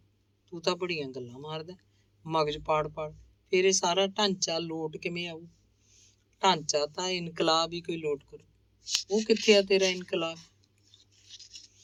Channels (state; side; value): identical; both; correlation 1.00